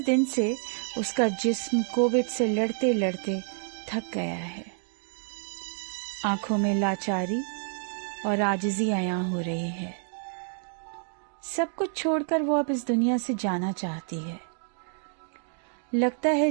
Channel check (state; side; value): silent; left; 59 dB below the other